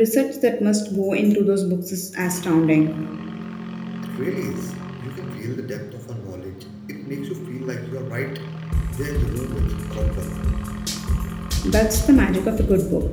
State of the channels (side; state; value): both; identical; correlation 1.00